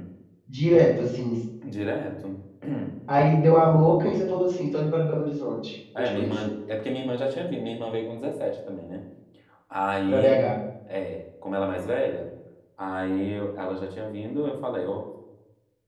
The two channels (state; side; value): identical; both; correlation 1.00